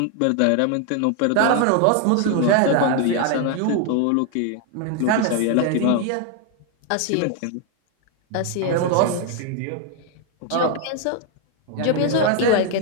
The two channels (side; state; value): both; different; correlation 0.00